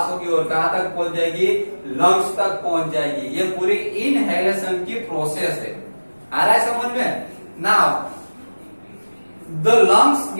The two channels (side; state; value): both; inverted; correlation -1.00